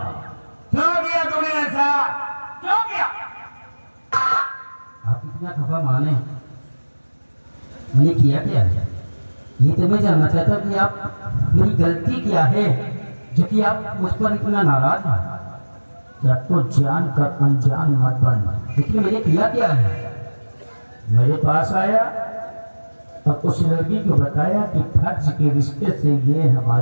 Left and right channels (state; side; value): inverted; both; correlation -1.00